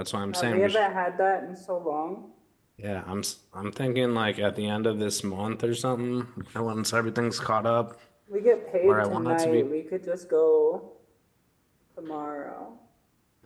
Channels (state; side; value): identical; both; correlation 1.00